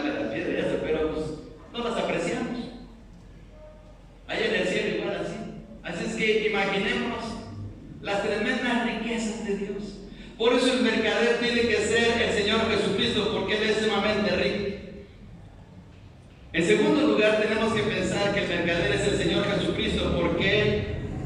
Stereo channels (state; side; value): identical; both; correlation 1.00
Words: la piedra y eso, pero pues no las apreciamos. Allá en el cielo igual así. Así es que imaginémonos las tremendas riquezas de Dios. Por eso el mercader tiene que ser el Señor Jesucristo, porque Él es sumamente rico. En segundo lugar, tenemos que pensar que el mercader es el Señor Jesucristo, porque Él